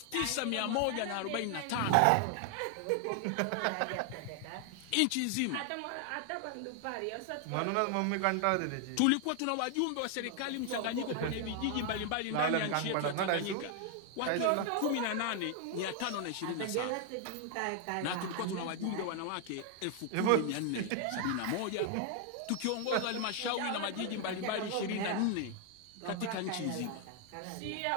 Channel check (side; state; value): both; different; correlation 0.00